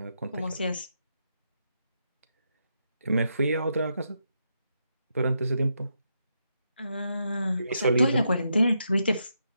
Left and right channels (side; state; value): both; inverted; correlation -0.82